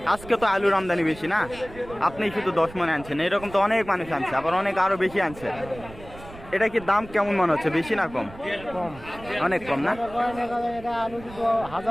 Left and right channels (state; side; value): noise; right; rumble, 17 dB below the sound